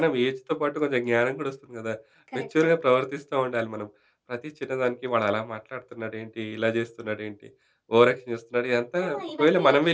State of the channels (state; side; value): identical; both; correlation 1.00